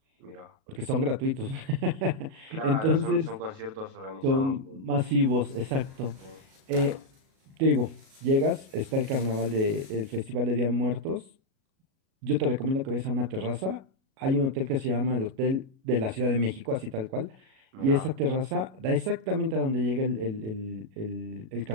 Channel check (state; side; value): late; left; 37 ms